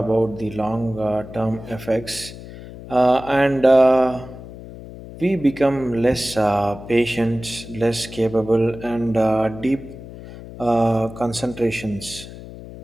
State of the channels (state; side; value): noise; left; hum, 14 dB below the sound